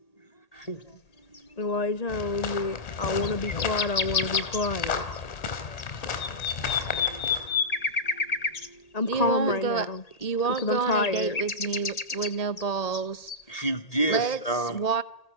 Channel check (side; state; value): right; late; 1.8 ms